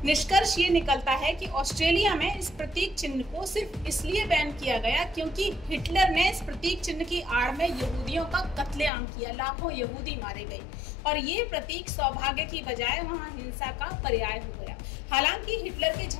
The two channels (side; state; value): right; drops out; at 8.9 s